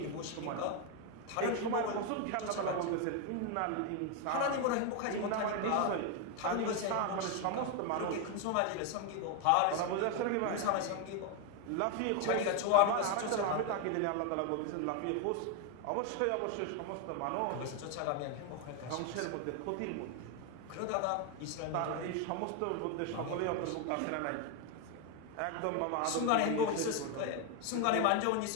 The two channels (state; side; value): different; both; correlation 0.01